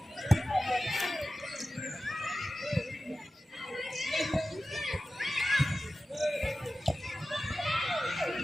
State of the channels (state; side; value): normal; both; correlation 0.95